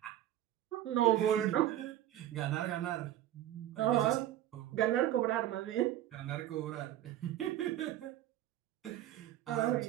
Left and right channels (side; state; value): left; quieter; 12.8 dB